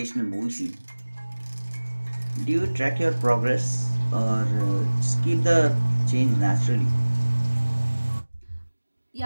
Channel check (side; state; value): both; inverted; correlation -1.00